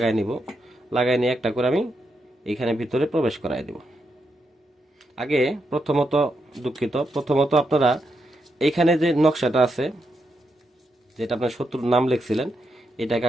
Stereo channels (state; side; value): normal; both; correlation 0.82